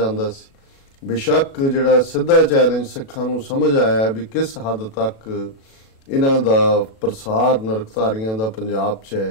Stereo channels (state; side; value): late; right; 34 ms